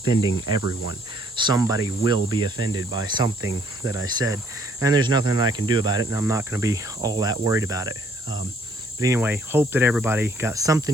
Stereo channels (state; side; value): normal; both; correlation 0.64